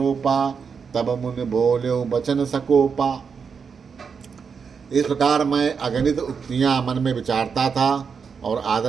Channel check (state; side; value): quieter; left; 6.0 dB